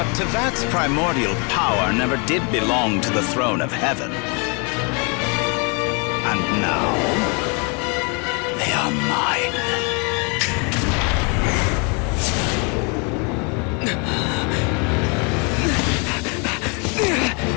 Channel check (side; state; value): right; quieter; 33.7 dB